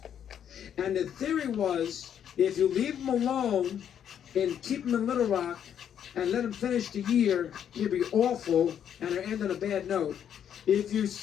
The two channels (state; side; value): quieter; right; 9.1 dB